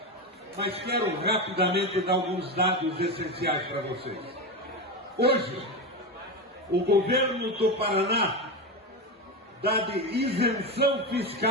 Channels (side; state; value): both; normal; correlation 0.17